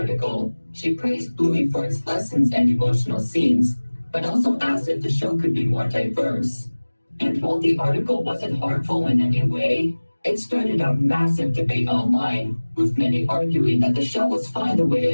she praised Bluey for its lessons and emotional scenes, but also asked if the show could be more diverse. And while the article wasn't harmful in any way, it started a massive debate online, with many arguing that the show was fine the way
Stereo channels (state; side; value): inverted; both; correlation -1.00